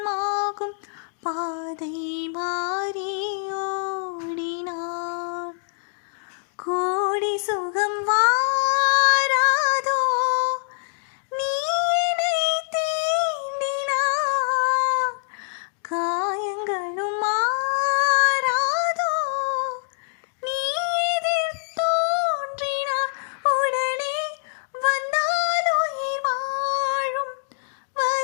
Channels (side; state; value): right; silent; 62 dB below the other